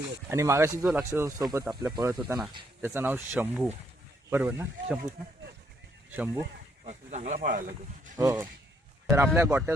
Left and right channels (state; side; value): normal; both; correlation 0.71